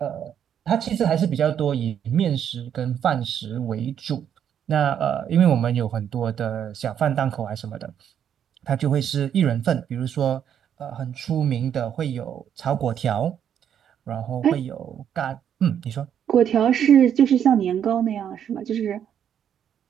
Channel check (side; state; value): left; quieter; 9.0 dB